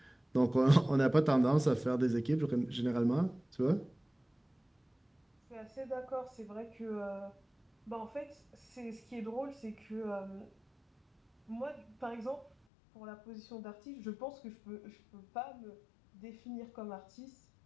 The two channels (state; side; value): drops out; right; at 12.6 s